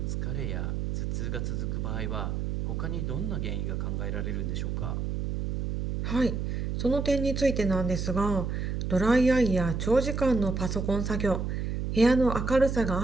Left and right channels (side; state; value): right; noise; hum, 2 dB below the sound